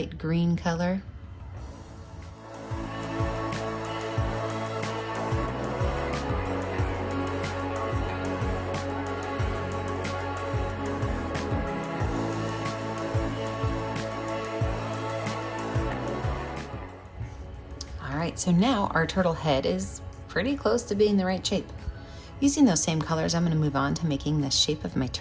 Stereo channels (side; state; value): both; identical; correlation 1.00